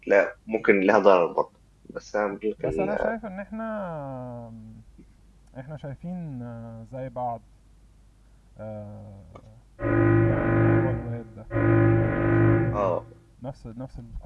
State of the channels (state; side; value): identical; both; correlation 1.00